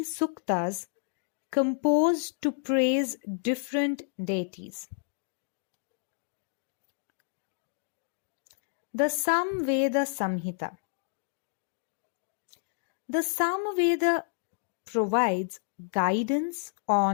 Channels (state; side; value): silent; right; digital silence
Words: suktas composed to praise different deities. The Samveda Samhita. The Samaveda provides guidance